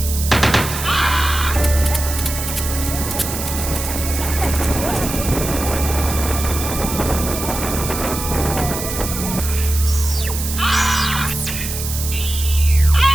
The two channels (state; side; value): noise; right; hiss, 6 dB below the sound